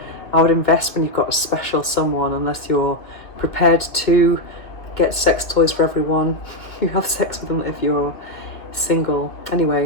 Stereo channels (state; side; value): late; right; 1.9 ms